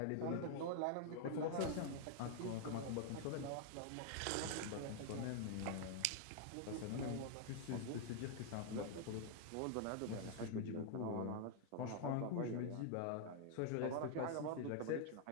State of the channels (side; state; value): both; different; correlation 0.00